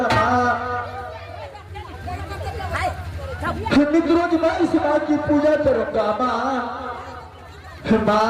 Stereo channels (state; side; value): identical; both; correlation 1.00